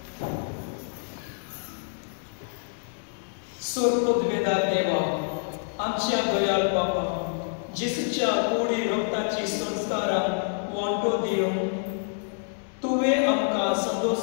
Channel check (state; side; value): silent; right; digital silence